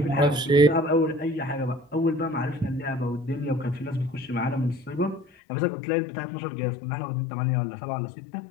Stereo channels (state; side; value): drops out; right; at 5.2 s